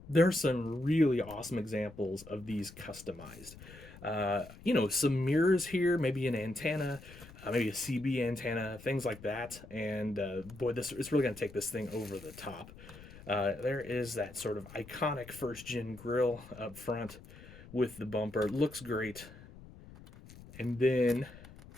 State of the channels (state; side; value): noise; left; rumble, 18 dB below the sound